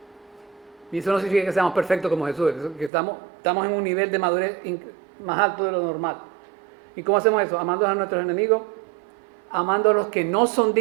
Y eso no significa que seamos perfectos como Jesús, que estamos en un nivel de madurez más alto de lo normal. ¿Y cómo hacemos eso? Amando a nuestros enemigos, amando a los que no son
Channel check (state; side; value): drops out; left; at 2.9 s